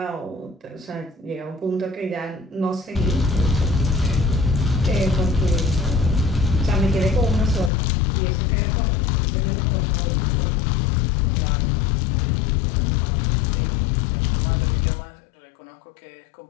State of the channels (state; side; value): drops out; right; at 7.7 s